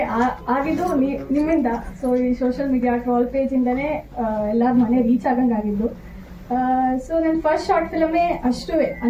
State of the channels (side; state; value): both; identical; correlation 1.00